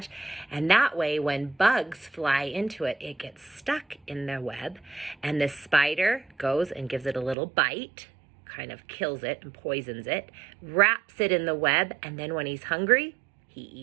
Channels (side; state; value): left; drops out; at 7.4 s